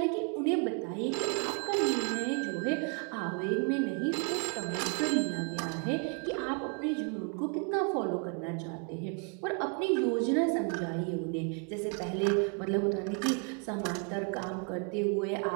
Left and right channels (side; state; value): left; quieter; 37.4 dB